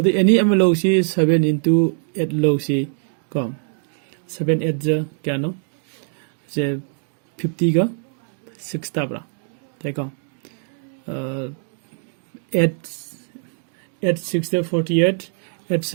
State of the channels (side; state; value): left; silent; 59 dB below the other